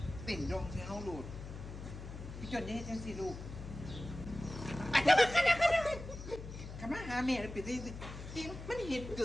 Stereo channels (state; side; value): noise; left; hum, 10 dB below the sound